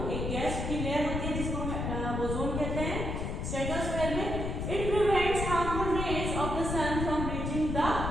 एक गैस की लेयर होती है जिसको हम ओजोन कहते हैं स्ट्रेटोस्फेयर में। It prevents harmful rays of the sun from reaching the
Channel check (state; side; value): noise; left; rumble, 2 dB below the sound